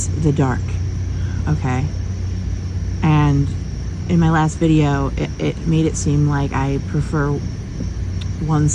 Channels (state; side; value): identical; both; correlation 1.00